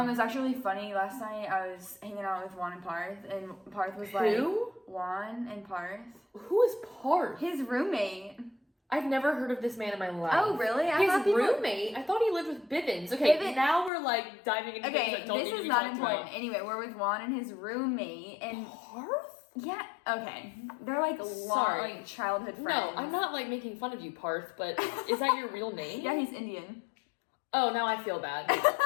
It was actually really funny. Last night I was hanging out with Juan and Parth, and Parth was like, Who? Juan and Parth, Who is Parth? his roommate. I've never heard of this man in my life. Oh, really? I His thought people- roommate? I thought he lived with Bivens. Okay, Bivens- now we're like diving into things Okay, that don't need this to is be not talked important. about. Anyway, we're with Juan and his roommate, and Parth? yeah, okay, they're like long, Sorry. like childhood friends. No, I'm not like making fun of you, Parth, but is that your real name? Yeah, he's Indian. Oh, now I feel bad.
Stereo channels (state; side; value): drops out; right; at 13.9 s